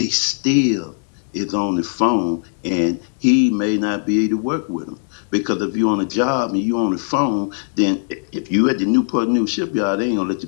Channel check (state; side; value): silent; right; digital silence